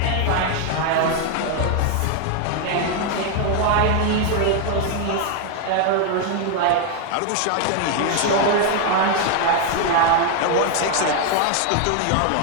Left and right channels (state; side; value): different; both; correlation 0.01